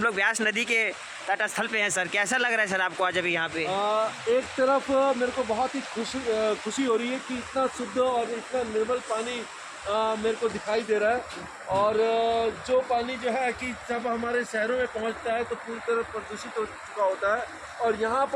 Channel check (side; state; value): both; identical; correlation 1.00